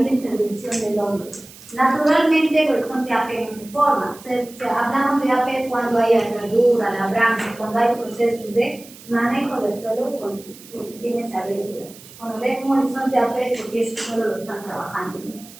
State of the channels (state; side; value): noise; right; hiss, 20 dB below the sound